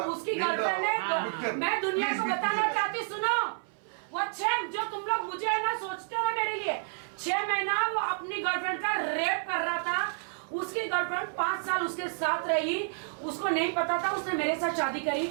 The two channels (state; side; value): silent; left; 58 dB below the other